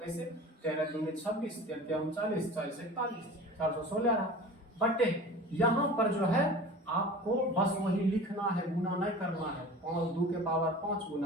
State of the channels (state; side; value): normal; both; correlation 0.38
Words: 13 दूनी 26 13 39 40 41 416 आ रहा। बट यहाँ पर जो है आपको बस वही लिखना है, गुना नहीं करना है। 2 के पावर 5